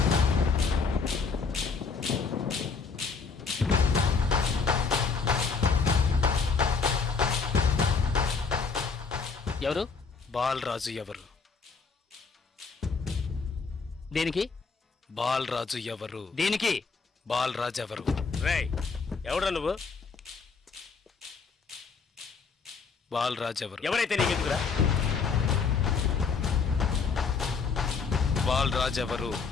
ఎవరు? బాలరాజు ఎవరు? దేనికి? బాలరాజు ఎవరు? దేనికి? బాలరాజు ఎవరు? రేయ్ ఎవడ్రా నువ్వు? బాలరాజు ఎవరు? ఎవరైతే నీకెందుకురా? బాలరాజు ఎవరు?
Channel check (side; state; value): right; quieter; 5.0 dB